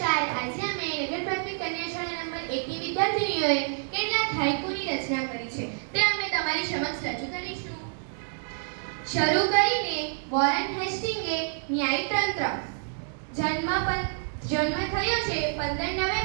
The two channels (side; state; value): left; silent; digital silence